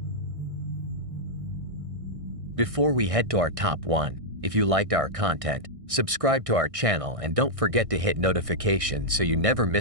Before we head to our top 1, if you liked our content, subscribe to our channel and don't forget to hit notifications so you never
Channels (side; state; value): left; late; 1.6 ms